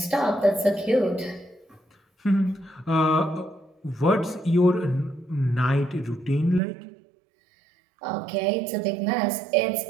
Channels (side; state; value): left; drops out; at 6.6 s